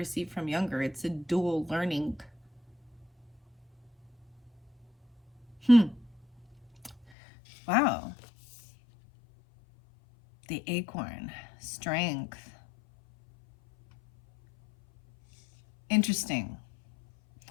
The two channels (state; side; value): drops out; right; at 7.1 s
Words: from younger. It's a dual learning. Wow. The acorn, strength. Interesting.